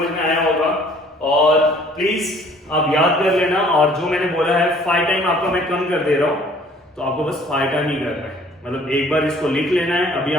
में आया होगा, और प्लीज आप याद कर लेना। और जो मैंने बोला है 5 टाइम आपका मैं कम कर दे रहा हूँ, तो आपको बस 5 टाइम ही करना है। मतलब एक बार इसको लिख लेना है, अभी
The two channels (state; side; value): normal; both; correlation 0.55